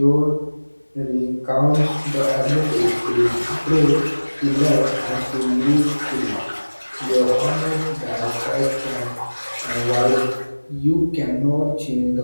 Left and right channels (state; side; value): inverted; both; correlation -1.00